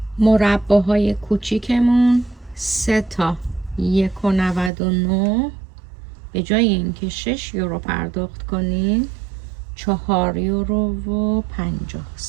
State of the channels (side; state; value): left; drops out; at 4.7 s